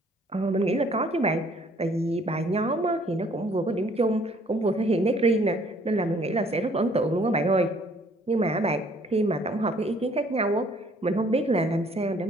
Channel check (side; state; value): both; normal; correlation 0.60